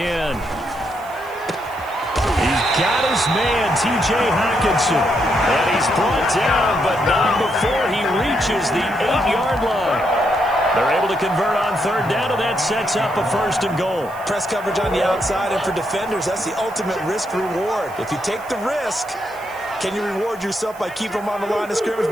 He's got his man, T.J. Hockenson. And he's brought down, but not before he reaches the 8-yard line. They're able to convert on third down, and that sets up a first and goal. Press coverage on the outside, and for defenders, that's the ultimate risk-reward. If you take the risk, can you reward yourself by keeping them on the line of scrimmage?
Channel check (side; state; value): right; noise; hiss, 23 dB below the sound